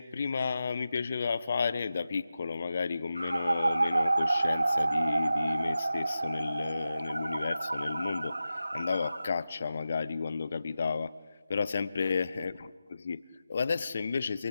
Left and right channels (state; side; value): inverted; both; correlation -0.91